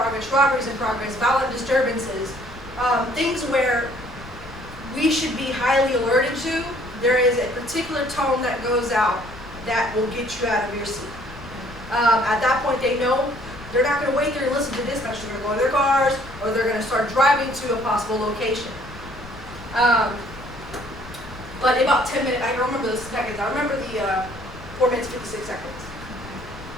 robberies in progress, violent disturbances, things where we should be highly alerted to, there is a particular tone that goes out that will get you out of your seat. At that point, they know they're not going to wait there and listen to dispatch. They're going to go in their cars, or they're going to start driving to a possible location. But in about 10 minutes, I don't remember the seconds. I remember the 4 minutes, 56 seconds.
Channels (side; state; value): left; noise; rumble, 18 dB below the sound